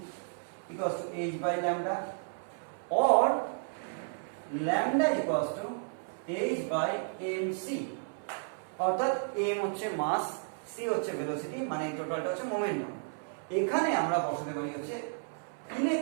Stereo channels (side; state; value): left; silent; 56 dB below the other